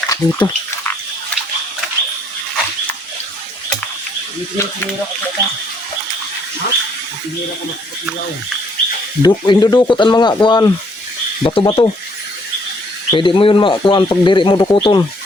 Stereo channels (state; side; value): normal; both; correlation 0.67